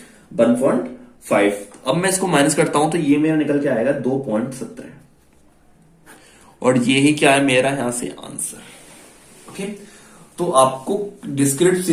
1.5। अब मैं इसको माइनस करता हूं तो ये मेरा निकल के आएगा 2.17, और ये ही क्या है मेरा यहां से आंसर। ओके, तो आपको डिस्क्रीट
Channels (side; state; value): both; identical; correlation 1.00